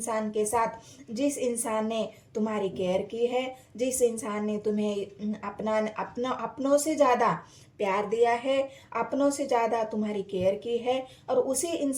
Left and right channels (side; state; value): both; identical; correlation 1.00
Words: के साथ, जिस इंसान ने तुम्हारी केयर की है, जिस इंसान ने तुम्हें अपनों से ज़्यादा प्यार दिया है, अपनों से ज़्यादा तुम्हारी केयर की है और उसी